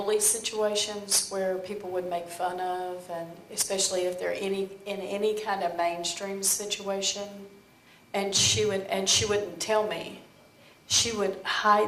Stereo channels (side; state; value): both; identical; correlation 1.00